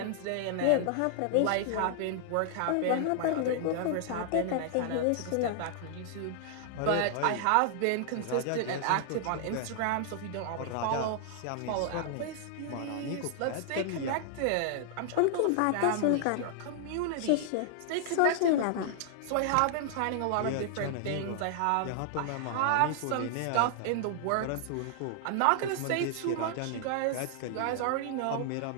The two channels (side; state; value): both; different; correlation -0.01